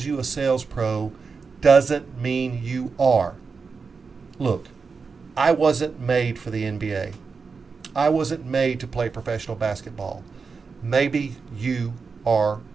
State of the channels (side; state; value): left; quieter; 5.0 dB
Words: you a sales pro doesn't mean you are. Look, I wasn't made for the NBA. I wasn't made to play professional basketball. Maybe you are